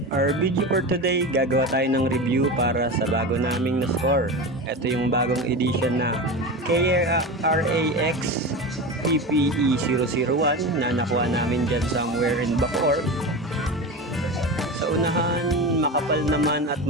our video for today, gagawa tayo ng review para sa bago naming na-score. Ito yung bagong edition na KRAX PPE001 na nakuha namin dyan somewhere in Bacoor. Sa unahan, makapal naman at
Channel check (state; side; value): normal; both; correlation 0.25